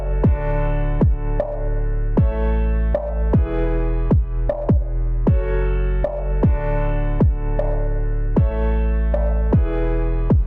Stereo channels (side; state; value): both; identical; correlation 1.00